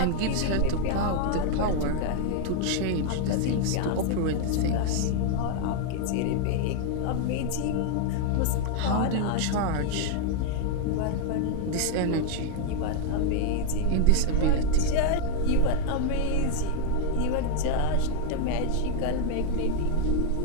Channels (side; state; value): both; different; correlation 0.00